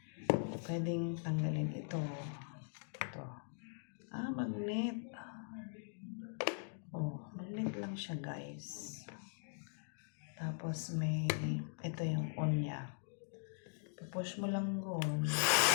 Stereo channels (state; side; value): silent; right; digital silence